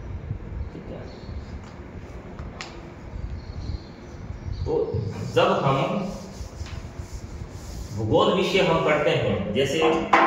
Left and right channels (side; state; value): both; identical; correlation 1.00